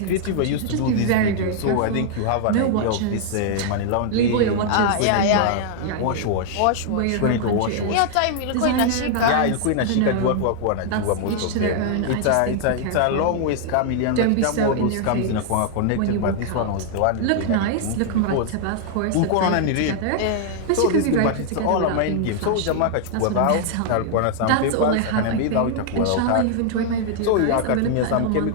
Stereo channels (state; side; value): different; both; correlation 0.00